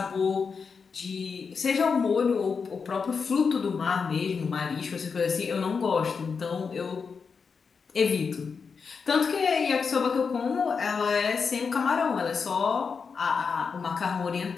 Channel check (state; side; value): quieter; right; 5.5 dB